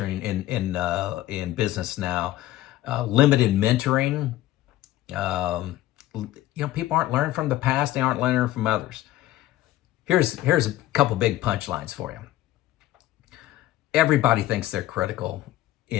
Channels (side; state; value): right; quieter; 14.9 dB